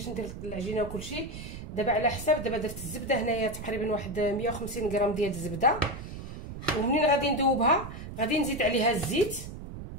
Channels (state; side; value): noise; right; rumble, 10 dB below the sound